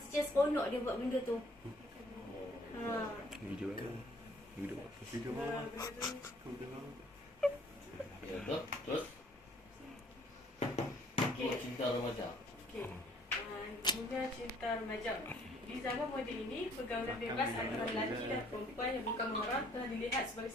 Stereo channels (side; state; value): both; normal; correlation 0.61